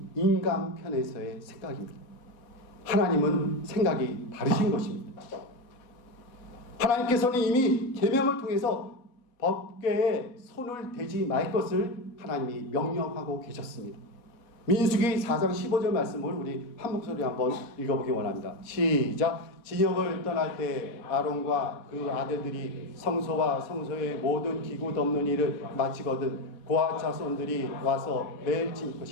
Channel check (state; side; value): late; right; 4.1 ms